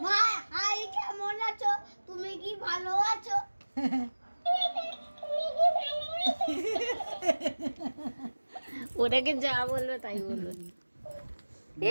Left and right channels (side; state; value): both; inverted; correlation -1.00